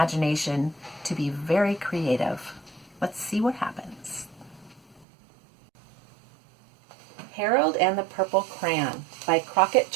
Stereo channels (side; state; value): left; drops out; at 5.1 s